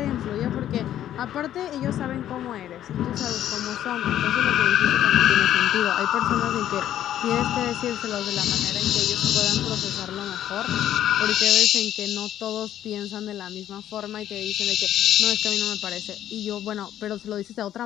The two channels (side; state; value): right; quieter; 11.5 dB